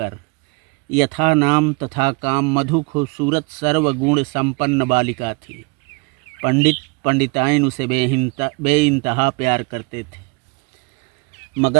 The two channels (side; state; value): left; quieter; 30.9 dB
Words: यथा नाम तथा काम मधु खूबसूरत सर्वगुण संपन्न बालिका थी। पंडित पंडिताइन उसे बेइंतहा प्यार करते थे,